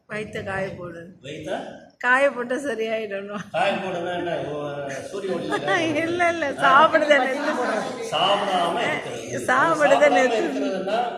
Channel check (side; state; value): both; identical; correlation 1.00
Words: வயிற்ற காய போடு. வயிற்ற காய போட்டு சரியாயிடணும். காய போடுனா என்ன? சூரிய ஒளி இல்லை இல்லை, சாப்பிடாம இருக்கிறதுனா